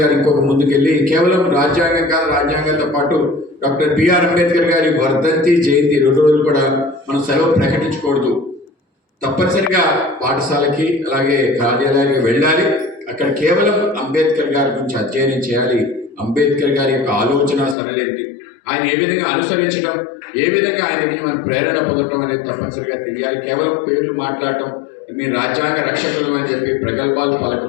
గారు ఇంకొక ముందుకెళ్ళి కేవలం రాజ్యాంగం కాదు, రాజ్యాంగంతో పాటు డాక్టర్ బిఆర్ అంబేద్కర్ గారి వర్ధంతి జయంతి 2 రోజులు కూడా మనం సెలవు ప్రకటించకూడదు. తప్పనిసరిగా పాఠశాలకి అలాగే కార్యాలయానికి వెళ్ళాలి. అక్కడ కేవలం అంబేద్కర్ గారి గురించి అధ్యయనం చేయాలి. అంబేద్కర్ గారి యొక్క ఆలోచన సరళేంటి, ఆయన ఏ విధంగా అనుసరించడం, ఏ విధంగా ఆయన దగ్గర మనం ప్రేరణ పొందడం అనేది తప్పనిసరిగా తెలియాలి. కేవలం పేర్లు మాట్లాడటం, మీ రాజ్యాంగ రక్షకులు అని చెప్పి ప్రగల్భాలు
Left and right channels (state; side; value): drops out; right; at 17.8 s